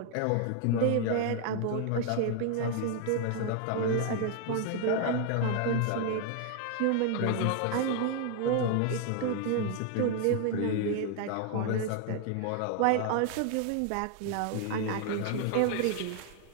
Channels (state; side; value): different; both; correlation 0.00